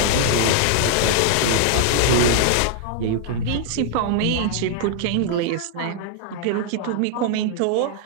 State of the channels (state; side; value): different; both; correlation 0.00